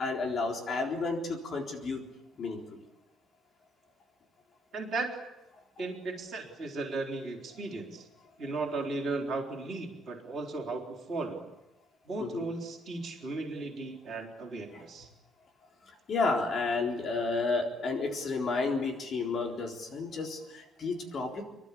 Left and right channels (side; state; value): both; normal; correlation 0.69